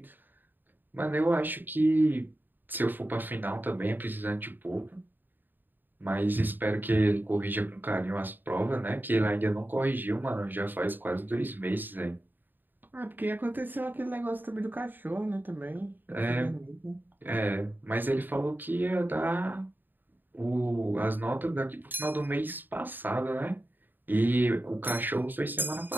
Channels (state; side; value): late; left; 0.091 ms